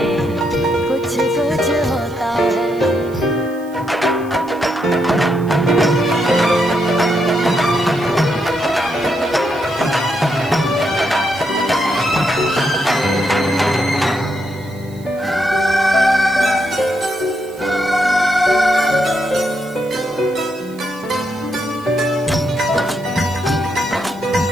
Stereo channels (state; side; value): noise; right; hiss, 25 dB below the sound